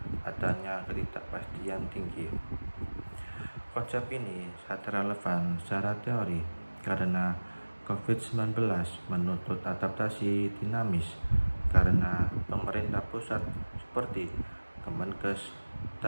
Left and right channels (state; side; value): inverted; both; correlation -1.00